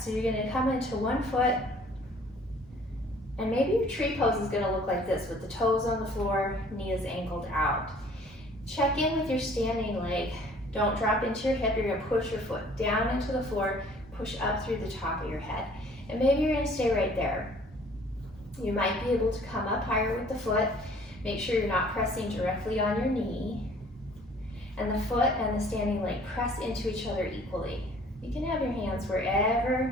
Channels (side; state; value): both; normal; correlation 0.54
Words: So you're going to come into one foot And maybe your tree pose is gonna look like this with the toes on the floor, knees angled out. Check in with your standing leg. Don't drop into your hip. You're gonna push your foot down into the floor, push up through the top of your head. And maybe you're gonna stay right there. You might be able to come up higher with the foot. Make sure you're not pressing directly on your knee. And the foot and the standing leg press into each other equally. You can have your hands wherever